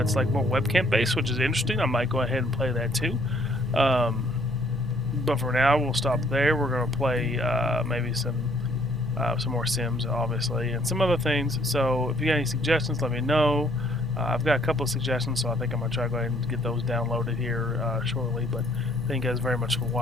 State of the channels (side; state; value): both; normal; correlation 0.63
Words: like more webcam based, which is interesting. I might go ahead and play that too. But for now, we'll stop there. We're going to play maybe some more Sims, obviously, and some other things. So if you got any suggestions, let me know. I've got a couple of suggestions, so I think I'm going to try to go ahead and get those downloaded here shortly. But thank you guys very much for